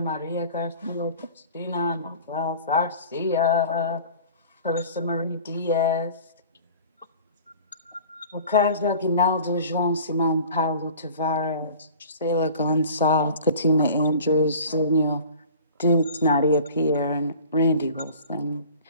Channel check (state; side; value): inverted; both; correlation -0.44